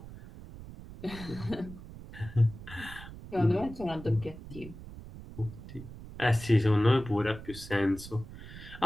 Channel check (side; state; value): right; noise; rumble, 14 dB below the sound